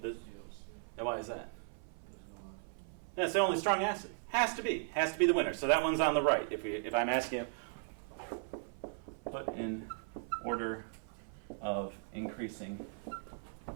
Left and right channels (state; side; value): silent; left; 53 dB below the other